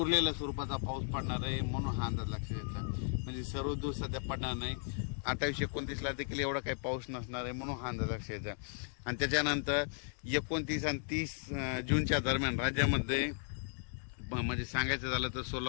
स्वरूपाचा पाऊस पडणार आहे म्हणून हा अंदाज लक्षात घ्यायचा. म्हणजे सर्वदूर सध्या पडणार नाही. 28-29 देखील एवढा काही पाऊस नसणार आहे म्हणून हा अंदाज लक्षात घ्यायचा. आणि त्याच्यानंतर 29 आणि 30 जूनच्या दरम्यान राज्यामध्ये म्हणजे सांगायचं झालं तर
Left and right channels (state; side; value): silent; right; 54 dB below the other